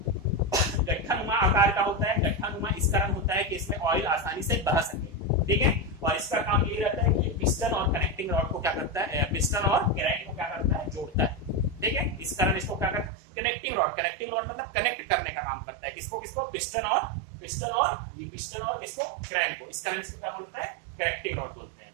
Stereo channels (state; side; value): drops out; left; at 13.1 s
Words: गट्ठानुमा आकार का होता है। गट्ठानुमा इस कारण होता है कि इसमें ऑयल आसानी से बह सके। ठीक है, और इसका काम ये रहता है कि पिस्टन और कनेक्टिंग रॉड को क्या करता है, पिस्टन और क्रैंक को क्या करता है, जोड़ता है। ठीक है, इस कारण इसको क्या करता है, कनेक्टिंग रॉड। कनेक्टिंग रॉड मतलब कनेक्ट करने का काम करता है। किसको किसको, पिस्टन और किसको, क्रैंक को। इस कारण इसको क्या बोलता है, कनेक्टिंग रॉड बोलते हैं।